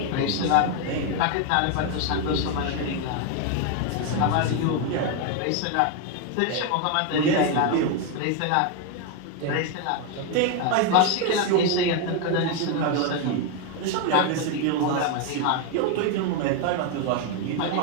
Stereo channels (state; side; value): different; both; correlation 0.01